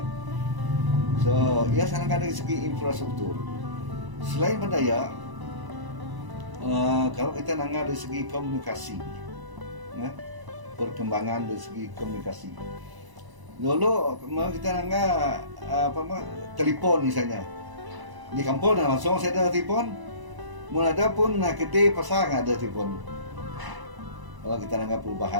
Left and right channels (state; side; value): late; left; 1.0 ms